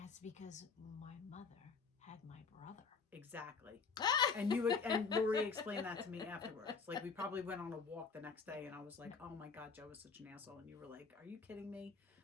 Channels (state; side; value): quieter; right; 5.1 dB